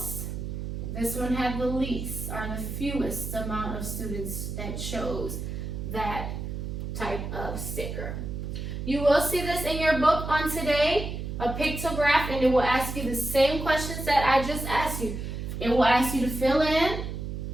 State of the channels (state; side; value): noise; right; hum, 5 dB below the sound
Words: this one had the least, or the fewest amount of students that chose that type of sticker. You will see this in your book on today. pictograph, and it will ask you the same questions that I just asked you. It will ask you to fill in,